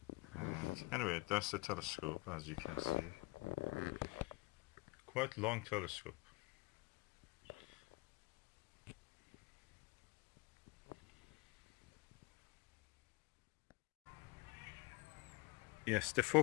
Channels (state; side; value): quieter; right; 23.6 dB